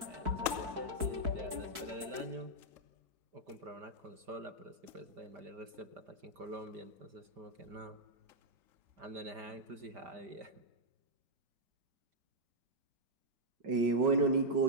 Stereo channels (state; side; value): late; left; 4.6 ms